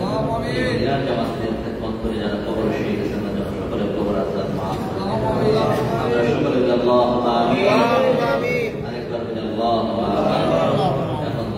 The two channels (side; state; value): both; identical; correlation 1.00